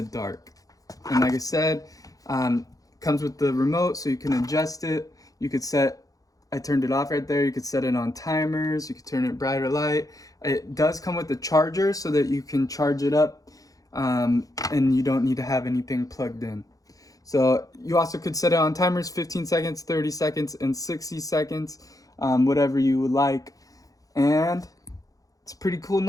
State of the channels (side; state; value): right; late; 0.17 ms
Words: dark. And like I said, comes with the remote so you can adjust it. You could set, I turned it off right there. You could set it on timers. You could turn it bright or light. It does come with the charger so that you can charge it up, and you don't need to have anything plugged in. So you also could set it on timers, 15 seconds, 30 seconds, and 60 seconds, whatever you would like. And it's a pretty cool